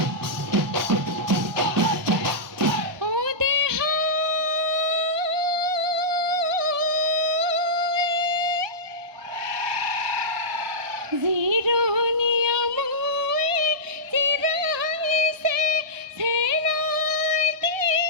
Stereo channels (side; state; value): left; late; 1.2 ms